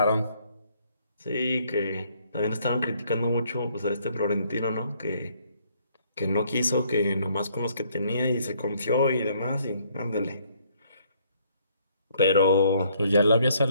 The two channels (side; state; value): both; inverted; correlation -0.66